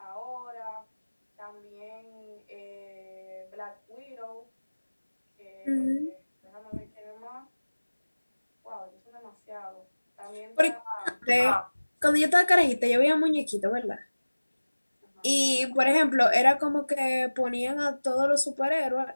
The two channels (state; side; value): inverted; both; correlation -1.00